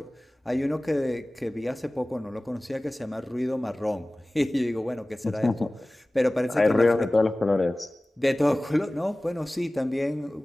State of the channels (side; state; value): both; normal; correlation 0.98